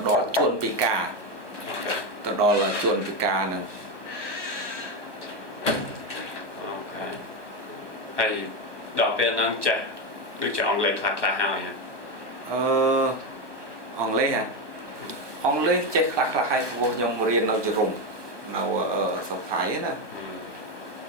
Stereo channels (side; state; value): left; late; 1.2 ms